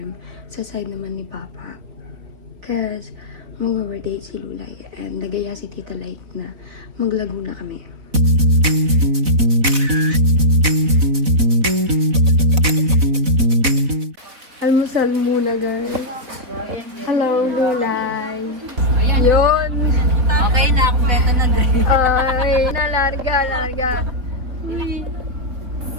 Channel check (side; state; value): left; late; 4.0 ms